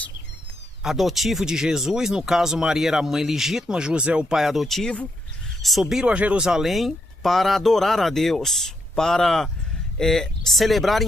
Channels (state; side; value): normal; both; correlation 0.79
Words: adotivos de Jesus, no caso Maria era a mãe legítima, José o pai adotivo, subiram a Jerusalém para adorar a Deus, para